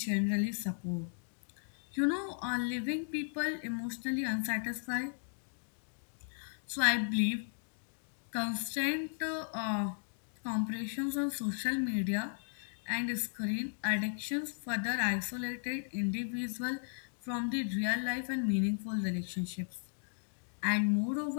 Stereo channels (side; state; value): right; silent; digital silence